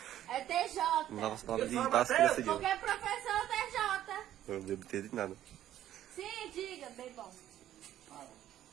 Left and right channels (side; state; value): left; quieter; 12.2 dB